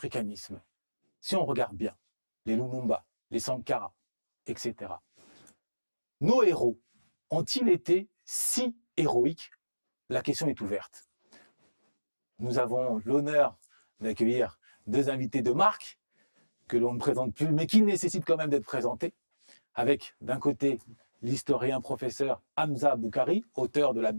si on regarde bien, les Lumumba, les Sankara, etc., nos héros ont-ils été si héroïques? La question est ouverte. Nous avons l'honneur d'accueillir deux invités de marque que l'on ne présente plus, mais qui nécessitent quand même d'être présentés, avec d'un côté l'historien professeur Hamza Boukari, auteur de la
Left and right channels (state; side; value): inverted; both; correlation -1.00